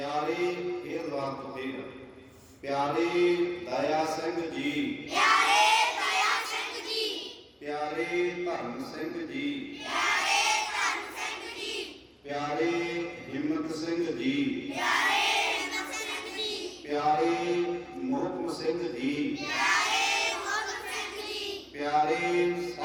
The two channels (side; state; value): both; identical; correlation 1.00